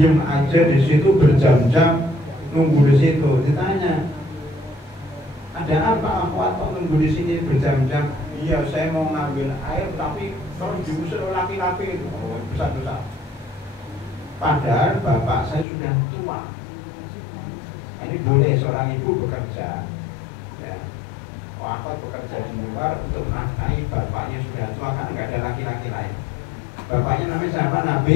aja di situ berjam-jam nunggu di situ. Ditanya, ada apa akhwat kok nunggu di sini berjam-jam? Iya, saya mau ngambil air tapi kalau diusir laki-laki itu besar-besar. Padahal bapak saya sudah tua. Ini boleh seorang ibu bekerja. Ya. Aku bekerja di luar untuk menafkahi bapaknya sudah tua karena nggak ada laki-laki lain. Bapaknya namanya siapa?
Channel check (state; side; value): drops out; right; at 15.7 s